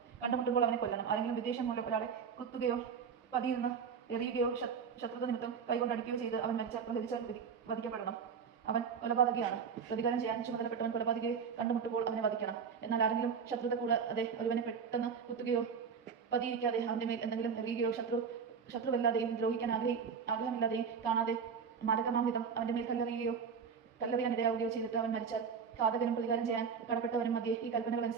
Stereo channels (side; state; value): left; quieter; 6.4 dB